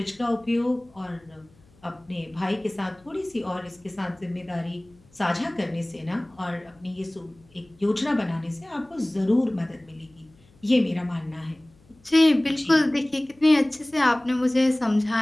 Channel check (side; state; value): left; noise; hum, 29 dB below the sound